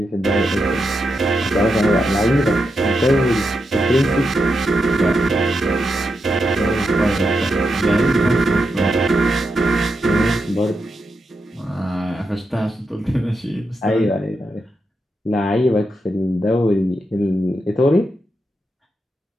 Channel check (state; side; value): normal; both; correlation 0.85